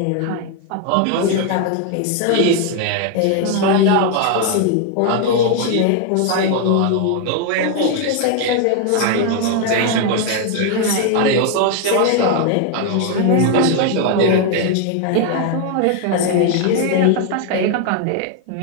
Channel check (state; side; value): different; both; correlation 0.00